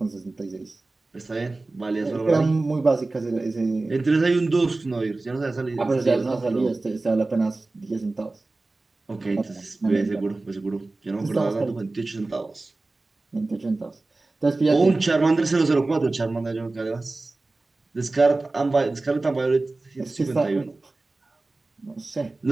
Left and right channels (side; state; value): left; quieter; 3.2 dB